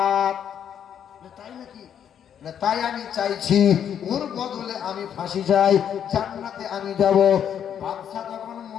তাই নাকি? তাই আমি চাইছি ওর বদলে আমি ফাঁসি চাই, জান্নাতে আমি যাব। বাদশা তখন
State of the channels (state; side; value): quieter; right; 9.0 dB